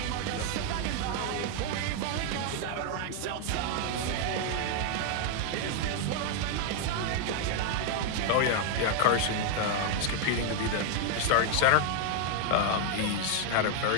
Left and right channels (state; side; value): different; both; correlation 0.00